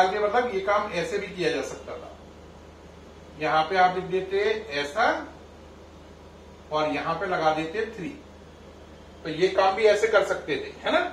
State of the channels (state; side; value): identical; both; correlation 1.00